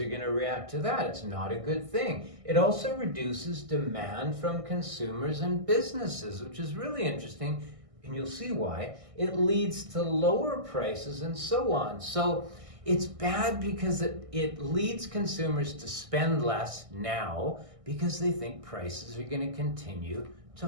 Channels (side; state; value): left; late; 1.6 ms